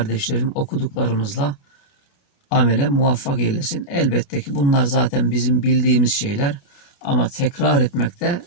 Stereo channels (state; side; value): late; right; 28 ms